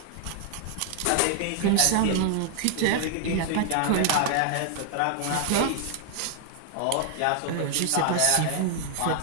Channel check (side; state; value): both; different; correlation 0.00